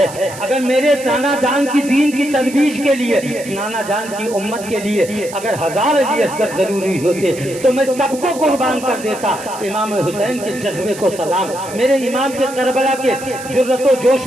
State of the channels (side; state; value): right; noise; hiss, 15 dB below the sound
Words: اگر میرے نانا جان کی دین کی ترویج کے لیے، نانا جان کی امت کے لیے اگر 1000 علی اصغر ضروری ہوتے تو میں سب کو قربان کر دیتا۔ امام حسین کے جذبے کو سلام، میرے امام کے کربلا کے جرأت و جوش